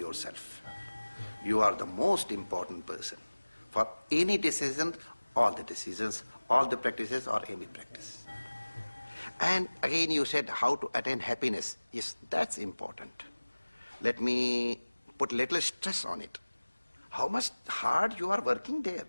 You are the most important person. For any decision, all the decisions, all the practices, or any practice. And again you said how to attain happiness. Yes, that's important. Let me put little stress on it. How much hard you are working there.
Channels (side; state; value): both; inverted; correlation -1.00